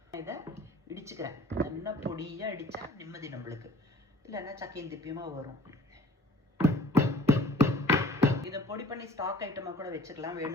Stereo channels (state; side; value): normal; both; correlation 0.50